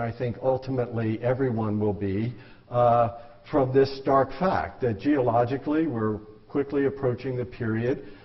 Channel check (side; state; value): both; identical; correlation 1.00